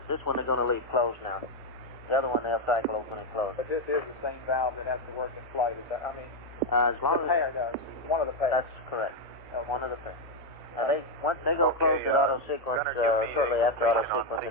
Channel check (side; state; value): both; normal; correlation 0.03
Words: This one they're going to leave closed now. The other one they'll cycle open and close. But this is the same valve that has to work in flight. Is that? I mean, as long the pair does. One of the pairs. That's correct. One of the pairs. Once they go close at auto sequence, shortly after auto sequence,